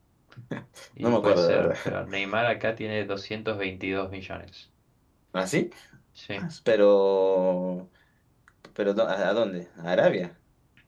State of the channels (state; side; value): identical; both; correlation 1.00